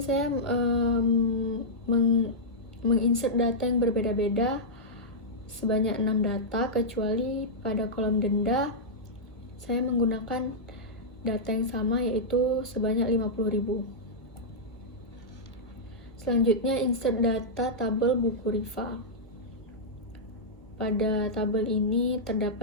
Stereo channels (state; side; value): late; right; 1.5 ms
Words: saya menginsert data yang berbeda-beda sebanyak 6 data, kecuali pada kolom denda saya menggunakan data yang sama, yaitu sebanyak 50.000. Selanjutnya insert data tabel buku Rifa. Pada tabel ini